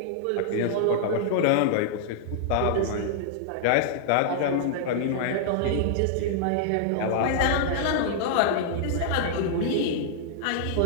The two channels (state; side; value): different; both; correlation -0.01